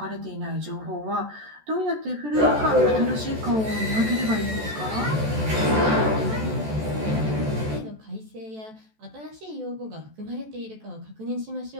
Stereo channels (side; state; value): left; late; 14 ms